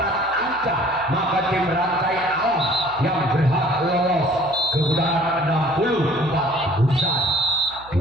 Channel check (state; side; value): noise; right; hum, 22 dB below the sound